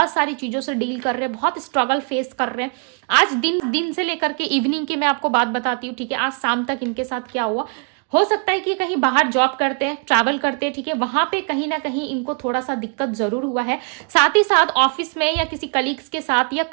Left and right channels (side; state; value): left; quieter; 37.4 dB